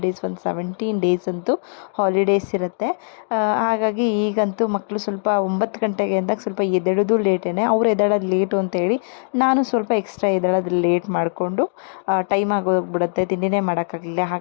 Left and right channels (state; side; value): silent; right; digital silence